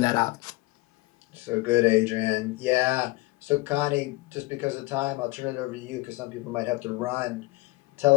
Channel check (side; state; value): right; quieter; 21.3 dB